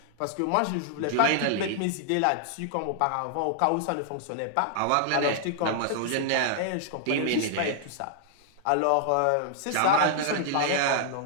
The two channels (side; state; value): both; different; correlation -0.01